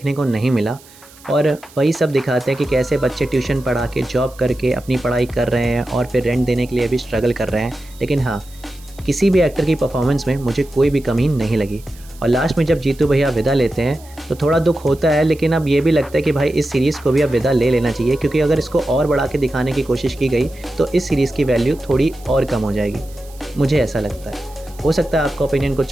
को नहीं मिला, और वही सब दिखाते हैं कि कैसे बच्चे ट्यूशन पढ़ा के जॉब करके अपनी पढ़ाई कर रहे हैं और फिर रेंट देने के लिए भी स्ट्रगल कर रहे हैं। लेकिन हाँ, किसी भी एक्टर की परफॉर्मेंस में मुझे कोई भी कमी नहीं लगी। और लास्ट में जब जीतू भैया विदा लेते हैं तो थोड़ा दुख होता है, लेकिन अब ये भी लगता है कि भाई इस सीरीज़ को भी अब विदा ले लेना चाहिए, क्योंकि अगर इसको और बढ़ा के दिखाने की कोशिश की गई तो इस सीरीज़ की वैल्यू थोड़ी और कम हो जाएगी, मुझे ऐसा लगता है। हो सकता है आपका ओपिनियन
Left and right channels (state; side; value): noise; right; hiss, 24 dB below the sound